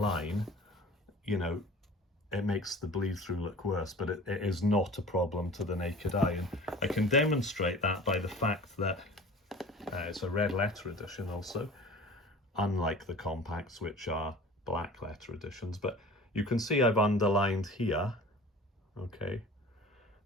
you know, it makes the bleed through look worse, but it is not a problem to the naked eye. And I can demonstrate that by the fact that it's a red letter edition also, unlike the compacts, which are black letter editions. But you can see I've underlined here. Okay,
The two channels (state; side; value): normal; both; correlation 0.42